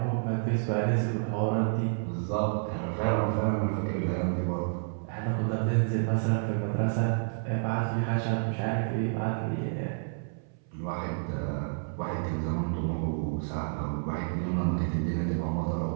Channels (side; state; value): left; silent; 58 dB below the other